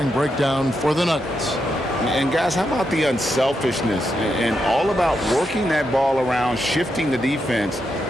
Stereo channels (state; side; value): normal; both; correlation 0.84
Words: breakdown for the Nuggets. And guys, how about the unselfishness and all about working that ball around, shifting the defense,